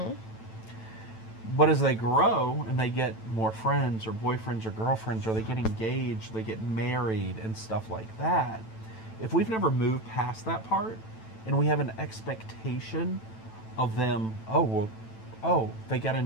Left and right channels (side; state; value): right; late; 9.1 ms